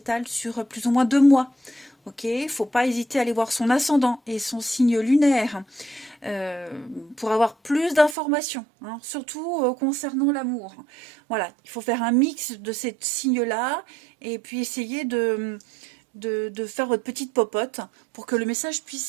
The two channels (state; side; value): drops out; left; at 8.2 s